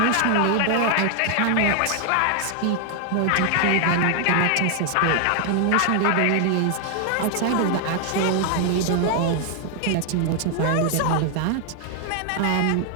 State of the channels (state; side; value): different; both; correlation 0.00